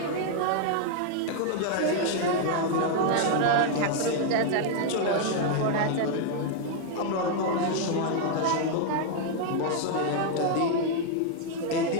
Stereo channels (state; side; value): different; both; correlation 0.00